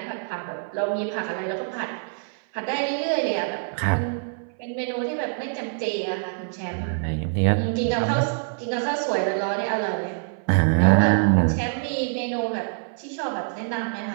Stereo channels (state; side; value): silent; left; 62 dB below the other